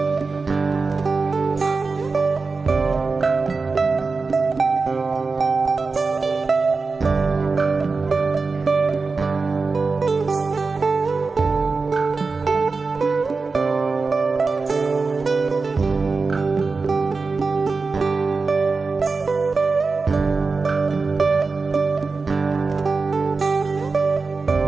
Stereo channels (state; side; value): quieter; left; 4.2 dB